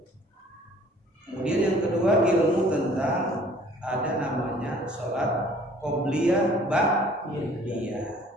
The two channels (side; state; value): both; normal; correlation 0.54